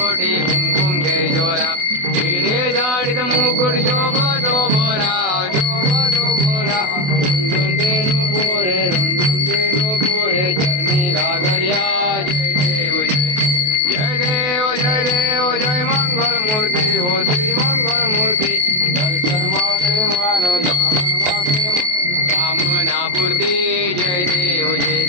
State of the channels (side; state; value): left; late; 28 ms